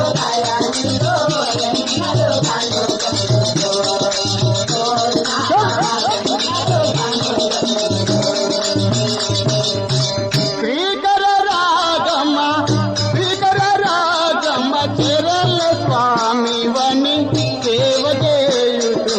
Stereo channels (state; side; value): identical; both; correlation 1.00